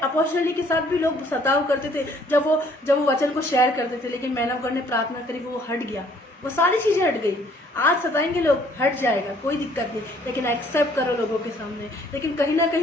के साथ भी लोग सताव करते थे जब वो वचन को शेयर करते थे, लेकिन मैंने गॉड ने प्रार्थना करी, वो हट गया, वो सारी चीजें हट गई। आज सताएंगे लोग, हट जाएगा, कोई दिक्कत नहीं, लेकिन एक्सेप्ट करो लोगों के सामने। लेकिन कहीं ना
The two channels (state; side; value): normal; both; correlation 0.61